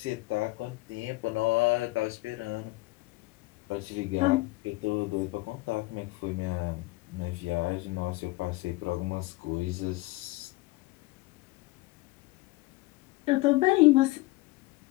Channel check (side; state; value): right; quieter; 21.3 dB